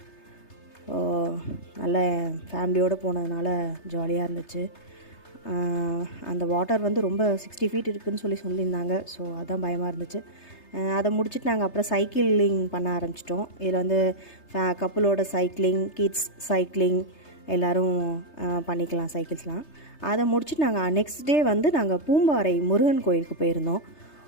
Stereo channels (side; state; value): right; late; 3.3 ms